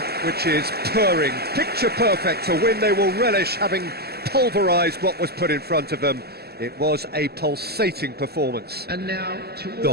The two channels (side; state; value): left; late; 0.46 ms